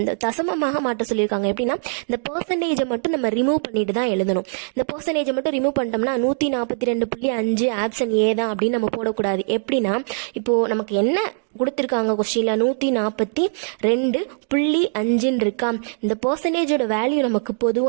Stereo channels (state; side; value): silent; left; digital silence